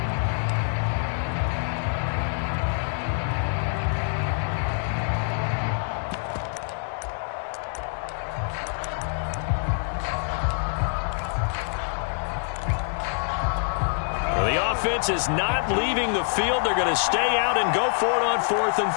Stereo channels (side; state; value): right; silent; 61 dB below the other